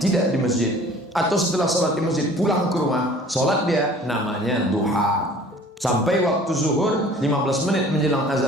di masjid, atau setelah sholat di masjid pulang ke rumah, sholat dia, namanya duha. Sampai waktu zuhur, 15 menit menjelang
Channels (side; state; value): both; normal; correlation 0.49